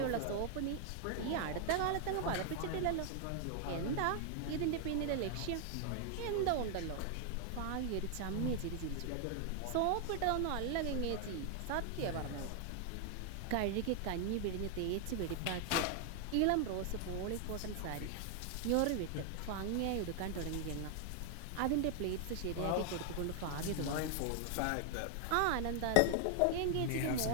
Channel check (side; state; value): both; different; correlation 0.00